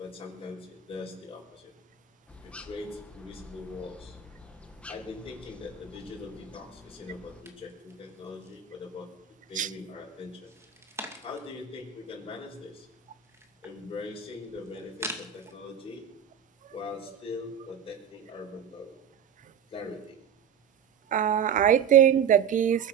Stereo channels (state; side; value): quieter; left; 7.7 dB